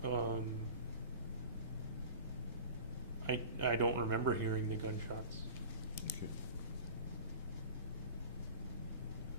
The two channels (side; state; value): both; inverted; correlation -0.37